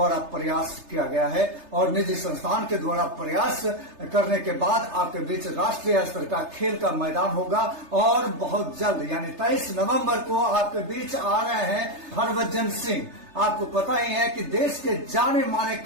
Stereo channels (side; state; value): left; late; 3.3 ms